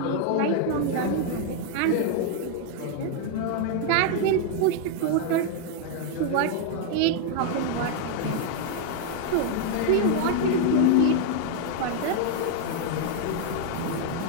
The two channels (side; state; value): both; different; correlation 0.00